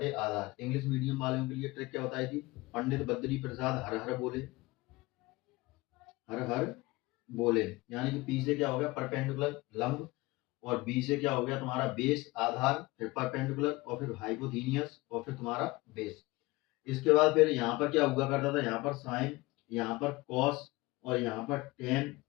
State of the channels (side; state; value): right; quieter; 21.8 dB